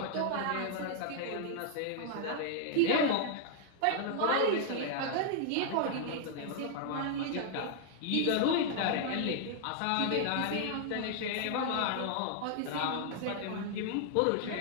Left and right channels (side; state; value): both; different; correlation 0.00